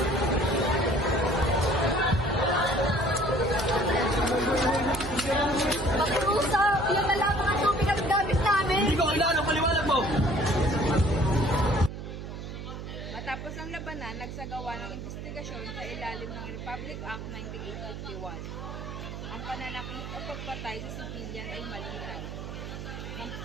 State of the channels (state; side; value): noise; right; hum, 8 dB below the sound